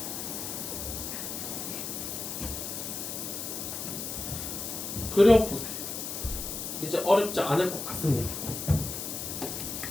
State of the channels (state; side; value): noise; left; hiss, 5 dB below the sound